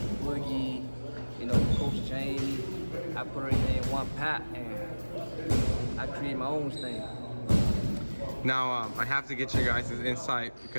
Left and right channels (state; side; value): inverted; both; correlation -1.00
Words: Boogie, you know, Coach Jamie. I put everything in one pot and I create my own thing. Now, I have to get your guys' insight